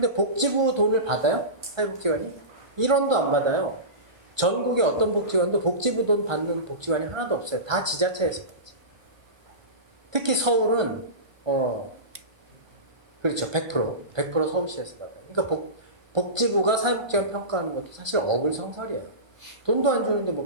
복지부 돈을 받아요? 사회복지관이? 1원도 안 받아요. 전국의 어떤 복지관도 복지부 돈 받는 복지관이 하나도 없어요. 다 지자체에서 받지. 특히 서울은 그렇죠. 100% 서울시에서 받아요. 그러니까 복지부가 사회복지관 평가하는 것도 사실 어불성설이에요. 돈도 안 주는데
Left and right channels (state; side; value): late; left; 1.2 ms